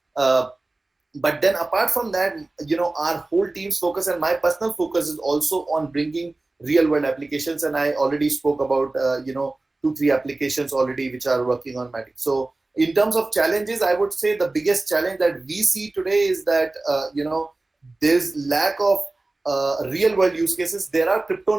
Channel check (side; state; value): left; quieter; 3.0 dB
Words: But then apart from that, our whole team's focus and my personal focus is also on bringing real world applications. And I already spoke about, 2-3 applications already which are working on Matic. So in terms of challenges, I would say the biggest challenge that we see today is that, there's lack of real world use cases. There are crypto